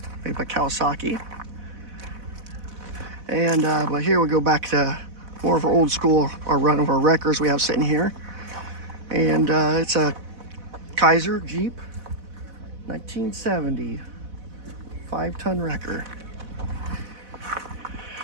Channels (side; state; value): left; late; 4.1 ms